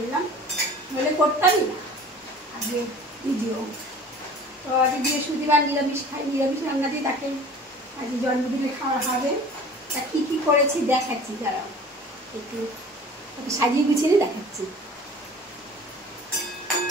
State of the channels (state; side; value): normal; both; correlation 0.44